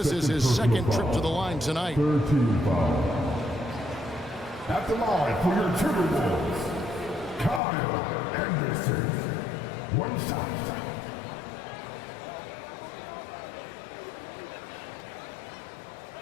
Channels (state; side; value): drops out; right; at 7.6 s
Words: is his second trip to the line tonight. 13 foul. At the line for your Timberwolves, Kyle Anderson. One shot.